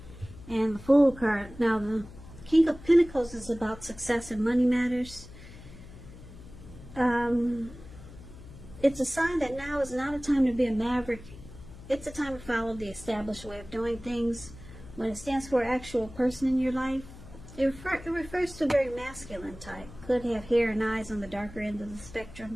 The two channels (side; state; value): left; noise; hum, 17 dB below the sound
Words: and the Fool card. Now the King of Pentacles is about success and money matters. It's a sign that now is not a time to be a maverick. It's a time to follow the established way of doing things. When it stands for an actual person in your life, it refers to a very masculine type. Could have hair and eyes on the darker end of the